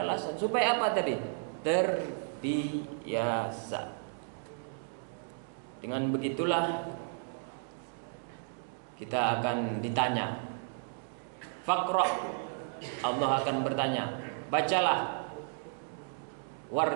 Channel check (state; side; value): silent; left; digital silence